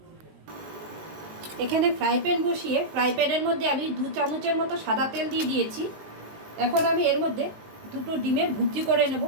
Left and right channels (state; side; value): late; left; 19 ms